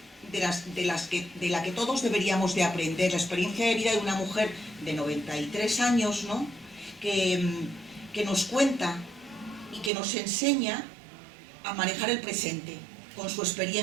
de la que todos deberíamos de aprender, la experiencia de vida de una mujer de 93 años, ¿no? que nos cuenta y que nos enseña a manejar el presente con su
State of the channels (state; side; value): drops out; left; at 9.9 s